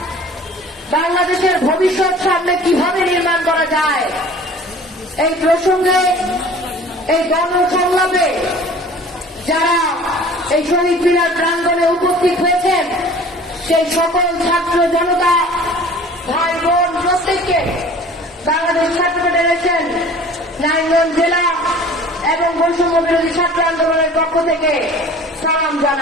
বাংলাদেশের ভবিষ্যৎ সামনে কিভাবে নির্মাণ করা যায় এই প্রসঙ্গে এই গণসংলাপে যারা এই শহীদ মিনার প্রাঙ্গণে উপস্থিত হয়েছেন সেই সকল ছাত্র জনতা ভাই বোন প্রত্যেককে বাংলাদেশ ছাত্র ফেডারেশন নারায়ণগঞ্জ জেলা এবং বৈষম্য বিরোধী ছাত্র আন্দোলনের পক্ষ থেকে সালাম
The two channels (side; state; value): both; normal; correlation 0.46